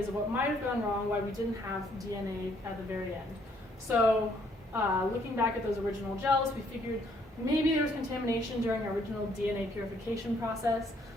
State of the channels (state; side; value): normal; both; correlation 0.67